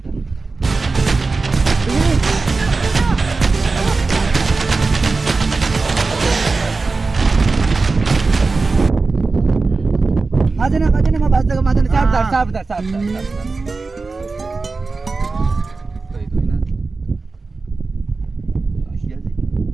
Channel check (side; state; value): left; quieter; 3.9 dB